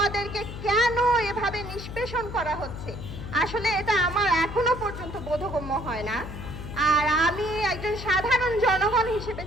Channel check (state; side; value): noise; left; hum, 9 dB below the sound